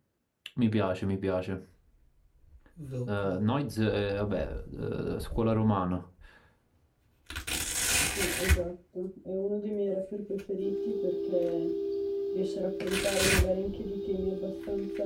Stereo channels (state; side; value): identical; both; correlation 1.00